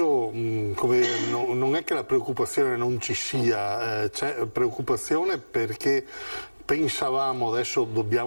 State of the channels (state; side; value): inverted; both; correlation -1.00